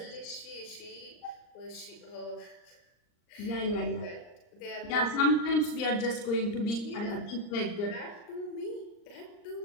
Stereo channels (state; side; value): late; right; 39 ms